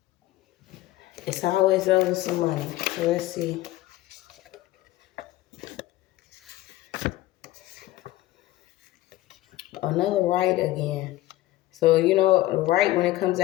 It's always over some money. So let's see. Another rite again. So, rite when it comes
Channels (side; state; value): right; quieter; 16.2 dB